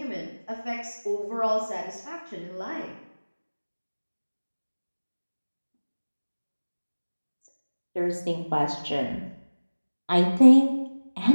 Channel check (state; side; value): inverted; both; correlation -1.00